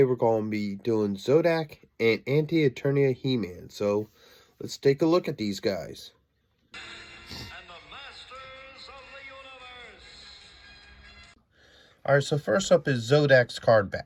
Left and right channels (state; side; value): identical; both; correlation 1.00